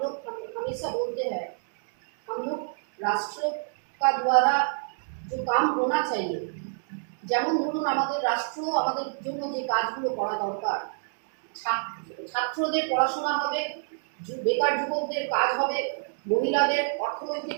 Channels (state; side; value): silent; left; digital silence